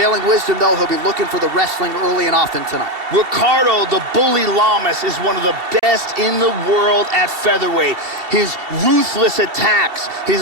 wisdom, though, he'll be looking for the wrestling early and often tonight. Ricardo, the bully Lamas, is one of the best in the world at featherweight. His ruthless attacks,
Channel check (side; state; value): left; late; 2.7 ms